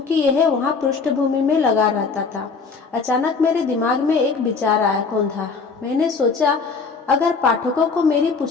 यह वहां पृष्ठभूमि में लगा रहता था। अचानक मेरे दिमाग में एक विचार आया, कौन था? मैंने सोचा, अगर पाठकों को मेरी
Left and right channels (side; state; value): right; quieter; 4.8 dB